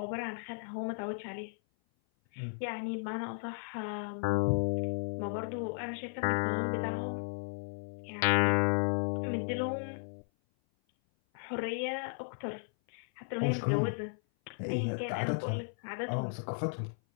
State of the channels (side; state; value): right; silent; 55 dB below the other